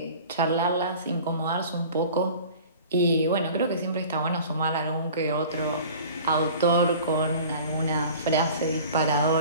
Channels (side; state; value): both; inverted; correlation -0.43